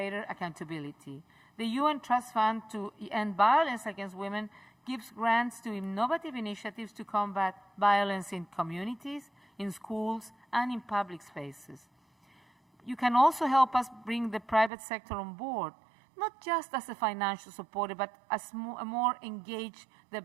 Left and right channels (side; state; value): left; drops out; at 14.7 s